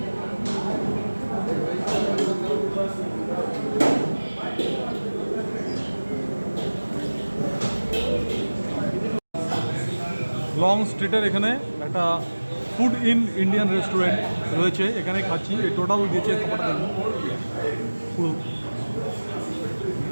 লং স্ট্রিটের এখানে একটা ফুড ইন ইন্ডিয়ান রেস্টুরেন্ট রয়েছে, এখানে খাচ্ছি। এই টোটাল দিয়েছে খাবারটা দেখুন, পুরো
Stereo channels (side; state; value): both; inverted; correlation -1.00